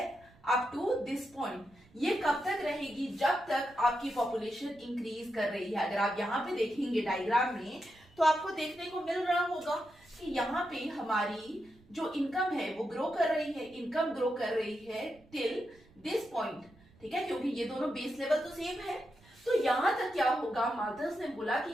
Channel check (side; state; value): right; noise; rumble, 27 dB below the sound